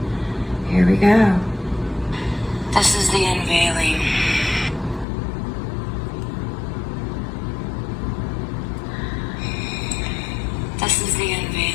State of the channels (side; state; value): right; drops out; at 5.1 s